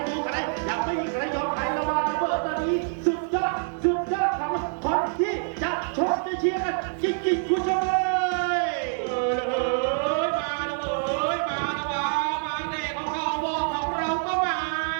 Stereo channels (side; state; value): left; silent; 61 dB below the other